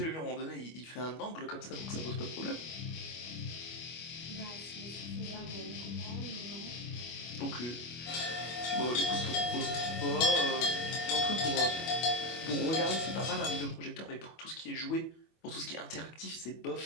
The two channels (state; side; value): late; right; 25 ms